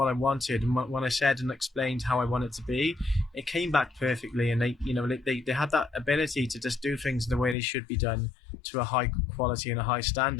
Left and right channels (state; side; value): drops out; right; at 7.6 s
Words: I wanted, and when I said and explained how I want it to be, it came back perfectly. And they had that ability to just do things the way they should be done, to a high quality and a high